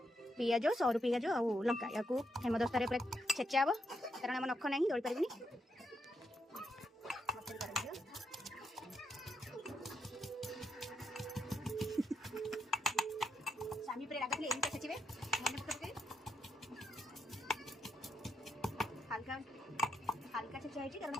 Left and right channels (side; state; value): both; normal; correlation 0.81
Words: पियाज सरू पियाज आ लंका या हेमदस्तार पूरा छेचा हम कारण आम नख ना दौड़ पारे स्वामी पूरा राग एमती छेचे हल्का हल्का छेचा है कारण